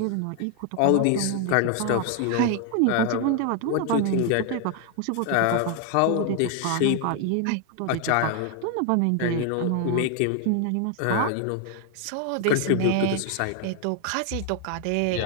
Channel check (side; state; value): both; different; correlation 0.00